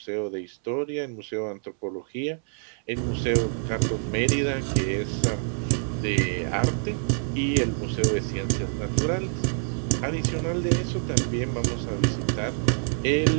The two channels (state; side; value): silent; left; 61 dB below the other